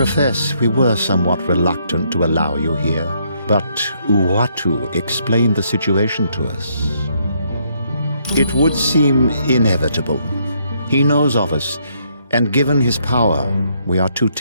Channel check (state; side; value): inverted; both; correlation -0.72